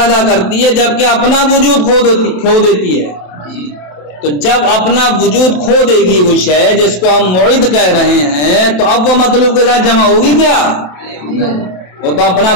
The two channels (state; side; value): late; right; 27 ms